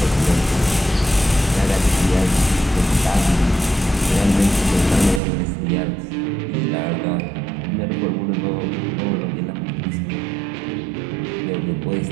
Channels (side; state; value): left; drops out; at 5.2 s